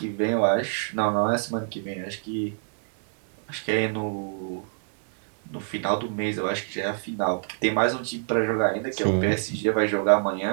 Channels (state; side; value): silent; left; 61 dB below the other